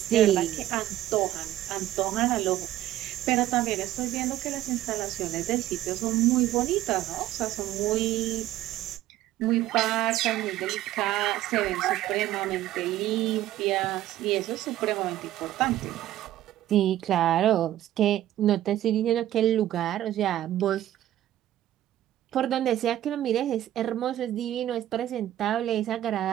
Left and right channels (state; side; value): quieter; left; 13.4 dB